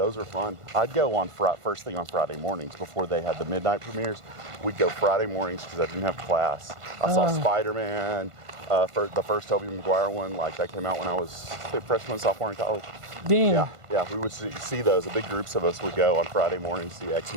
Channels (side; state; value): left; late; 1.5 ms